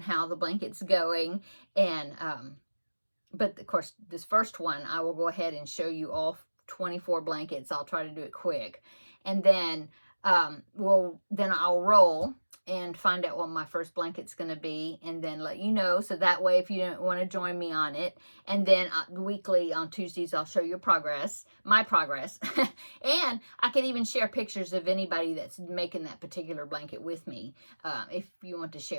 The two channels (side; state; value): both; inverted; correlation -1.00